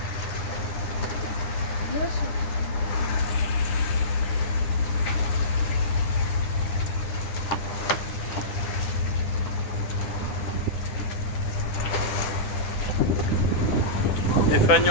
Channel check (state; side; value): late; right; 9.9 ms